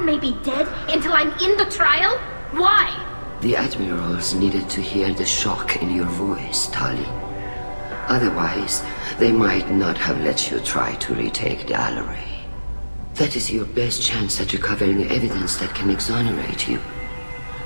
be dead until I'm in the trial? Why? The admirals needed to hear the shock in your voice, Tali. Otherwise, they might not have let you try to retake the Alarai. That is your best chance at recovering evidence that can exonerate you.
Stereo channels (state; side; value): inverted; both; correlation -1.00